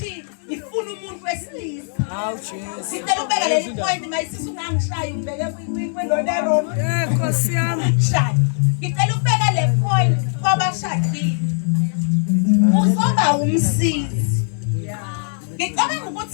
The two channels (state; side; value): silent; right; digital silence